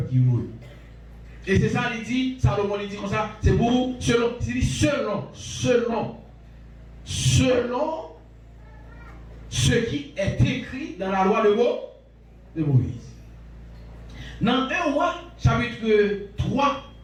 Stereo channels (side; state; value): both; identical; correlation 1.00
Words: qui roule. Et c'est ça, il dit, Salomon il dit comme ça, c'est pour, selon ce qui est écrit dans la loi de Moïse. Dans 1 roi, chapitre 3,